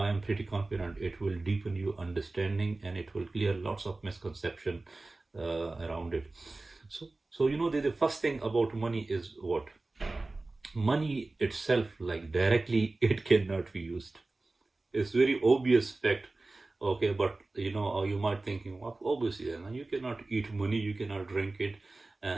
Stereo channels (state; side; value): quieter; left; 3.2 dB